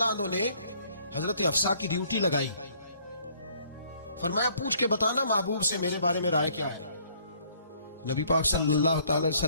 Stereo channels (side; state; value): both; inverted; correlation -0.62